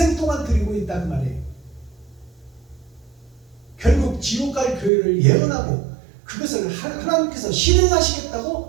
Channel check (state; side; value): drops out; left; at 4.9 s